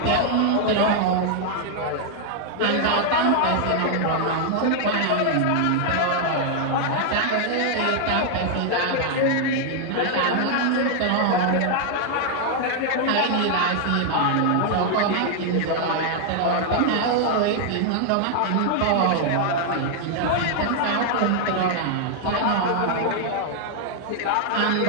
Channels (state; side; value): different; both; correlation 0.00